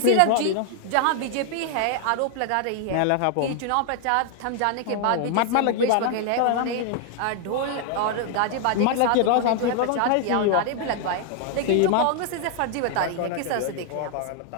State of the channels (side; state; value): both; different; correlation 0.00